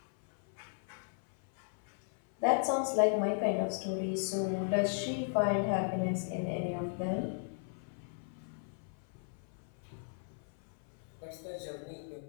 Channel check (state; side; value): silent; right; 54 dB below the other